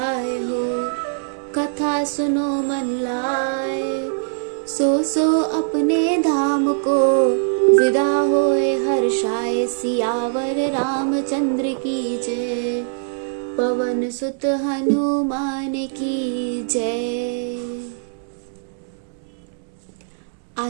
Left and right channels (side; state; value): left; silent; 65 dB below the other